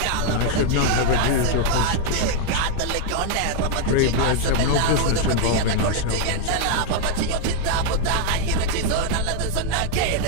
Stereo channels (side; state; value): both; different; correlation 0.00